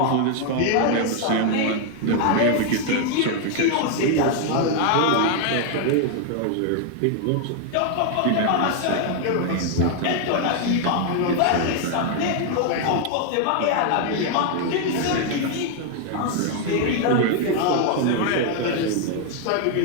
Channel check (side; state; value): both; different; correlation 0.00